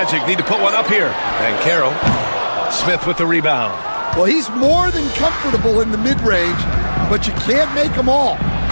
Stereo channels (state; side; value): inverted; both; correlation -1.00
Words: need to put one up here. And Carroll. Smith with the rebound. Well, he's more than comfortable in the mid-range, but you can't make them all.